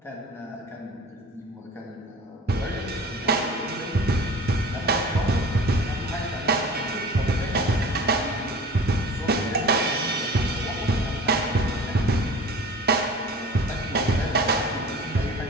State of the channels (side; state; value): both; normal; correlation 0.40